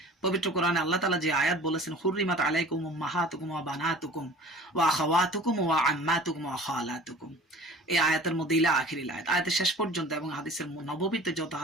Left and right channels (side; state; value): both; normal; correlation 0.44